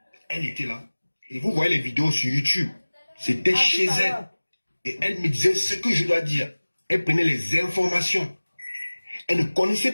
elle était là. Et vous voyez les vidéos sur YouTube. C'était chez elle. Et elle me disait ce que je dois dire. Elle prenait les informations. Elle ne connaissait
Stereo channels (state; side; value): inverted; both; correlation -1.00